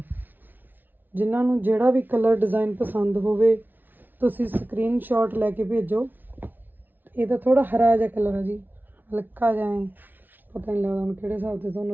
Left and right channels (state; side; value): late; left; 0.089 ms